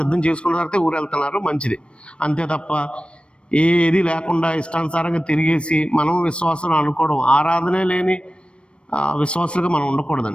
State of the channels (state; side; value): late; right; 0.058 ms